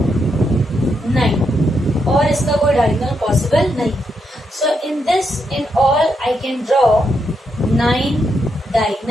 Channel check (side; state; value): both; normal; correlation 0.81